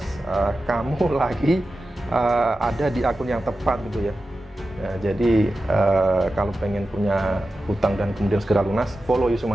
kamu lagi ada di akun yang tepat gitu ya. Jadi kalau pengen punya hutang dan kemudian segera lunas, follow Yusuf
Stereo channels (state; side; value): normal; both; correlation 0.93